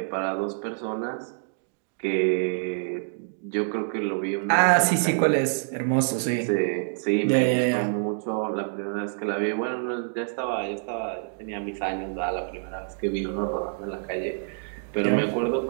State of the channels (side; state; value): left; silent; 60 dB below the other